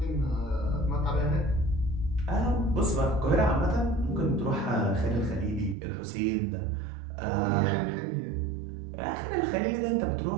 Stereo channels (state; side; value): drops out; left; at 5.8 s